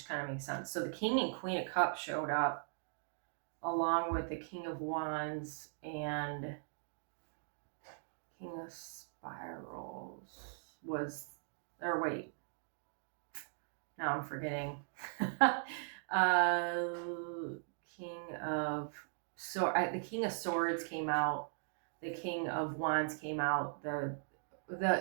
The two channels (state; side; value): silent; left; digital silence